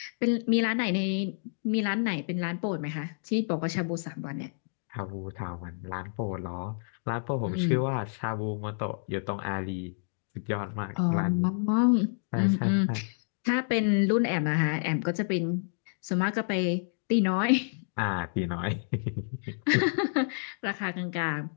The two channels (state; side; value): silent; right; digital silence